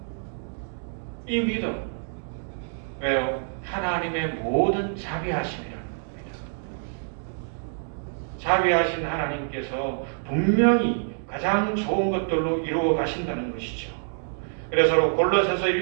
이 믿음 왜요? 하나님의 모든 자비하심이라는 겁니다. 자비하신 하나님께서 분명히 가장 좋은 것들로 이루어 가신다는 것이죠. 그래서 골로새서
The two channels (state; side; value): silent; left; digital silence